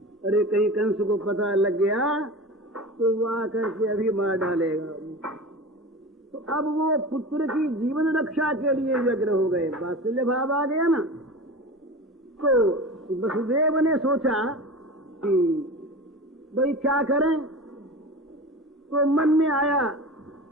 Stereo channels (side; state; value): both; normal; correlation 0.32